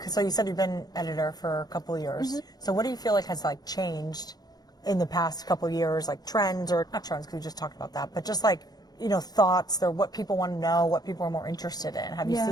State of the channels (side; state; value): right; late; 0.19 ms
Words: So you said you've been editor for a couple of years. So what do you feel like has like changed in the past couple of years, like trends or not trends? Because we just talked about that, but just like thoughts or what people want to know, what people are more interested in. Have you